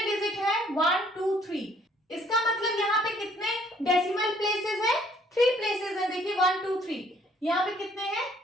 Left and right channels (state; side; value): normal; both; correlation 0.62